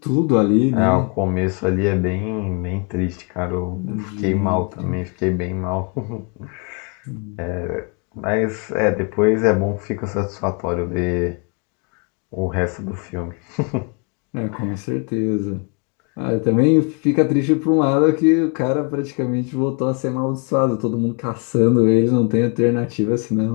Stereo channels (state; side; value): quieter; right; 35.9 dB